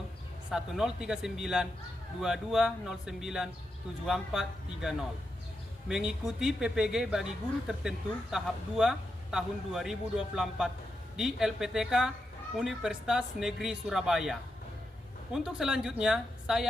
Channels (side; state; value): both; normal; correlation 0.86